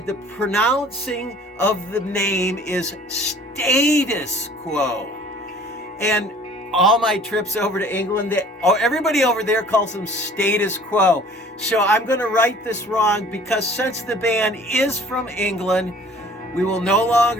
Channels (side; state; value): both; normal; correlation 0.50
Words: the pronouncing of the name is Status Quo. And all my trips over to England, everybody over there calls them Status Quo. So I'm going to right this wrong, because since the band is from England, we will no